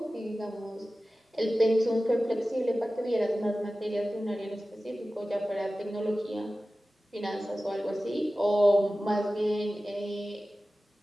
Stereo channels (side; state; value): both; normal; correlation 0.96